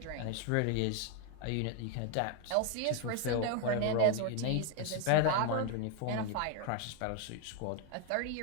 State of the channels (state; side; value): different; both; correlation 0.01